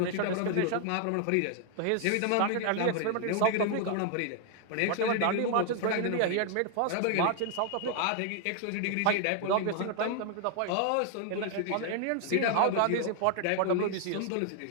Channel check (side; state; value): both; different; correlation 0.00